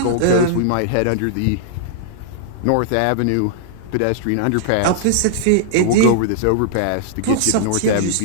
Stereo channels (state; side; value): different; both; correlation -0.01